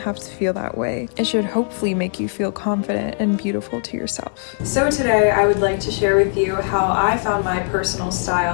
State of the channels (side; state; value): right; silent; 56 dB below the other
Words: to feel that way. It should hopefully make you feel confident and beautiful to yourself. So today I would like to share with you how I found my personal